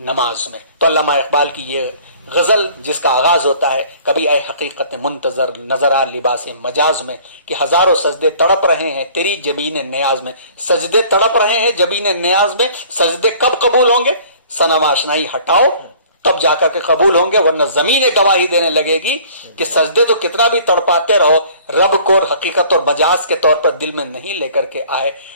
نماز میں. تو علامہ اقبال کی یہ غزل جس کا آغاز ہوتا ہے کبھی اے حقیقت منتظر نظر آ لباس مجاز میں, کہ ہزاروں سجدے تڑپ رہے ہیں تیری جبین نیاز میں. سجدے تڑپ رہے ہیں جبین نیاز میں, سجدے کب قبول ہوں گے؟ صنم آشنائی ہٹاؤ تب جا کر کے قبول ہوں گے, ورنہ زمین گواہی دینے لگے گی کہ سجدے تو کتنا بھی تڑپاتے رہو, رب کو حقیقت اور مجاز کے طور پر دل میں نہیں لے کر کے آئے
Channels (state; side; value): inverted; both; correlation -0.51